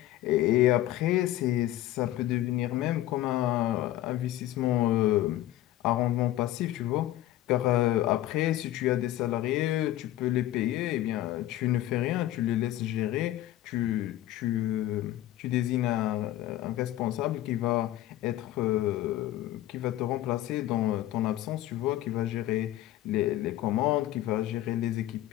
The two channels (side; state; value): right; quieter; 14.4 dB